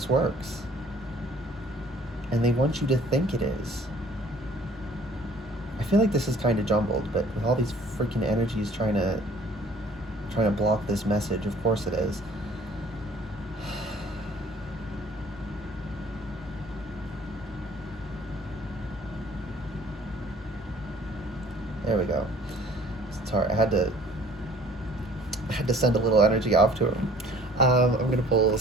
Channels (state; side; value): normal; both; correlation 0.54